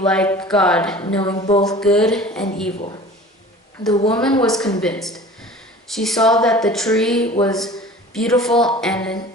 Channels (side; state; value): both; normal; correlation 0.42